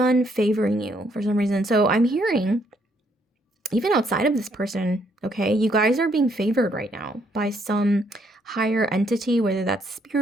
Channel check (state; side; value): normal; both; correlation 0.70